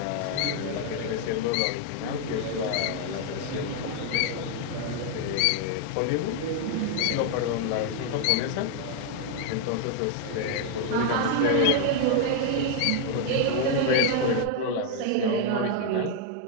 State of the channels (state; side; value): different; both; correlation 0.00